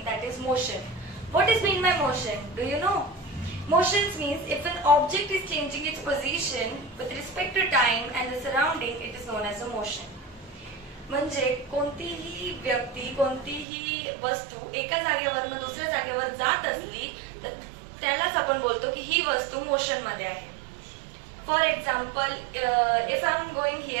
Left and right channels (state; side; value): drops out; left; at 13.7 s